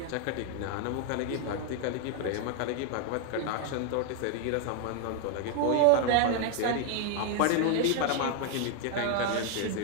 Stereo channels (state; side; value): different; both; correlation 0.00